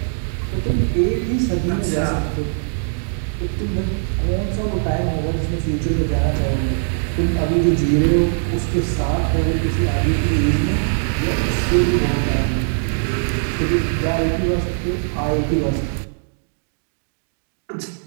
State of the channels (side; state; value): left; silent; digital silence